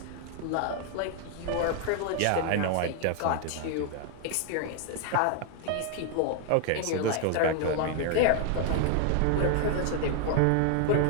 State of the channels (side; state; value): both; different; correlation 0.00